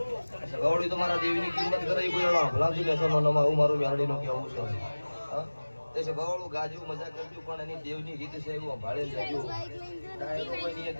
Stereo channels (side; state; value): both; inverted; correlation -1.00